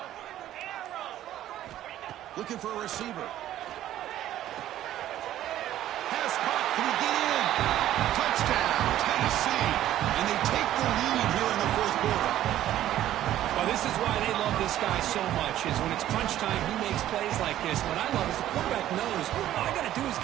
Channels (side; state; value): left; quieter; 12.8 dB